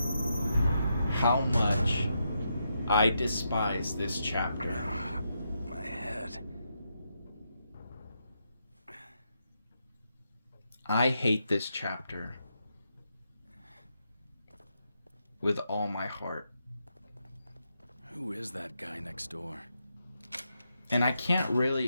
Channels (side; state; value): both; inverted; correlation -0.83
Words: how much I despise this chapter. My head. I hate this chapter with all my heart. Who is that guy next door? And I can't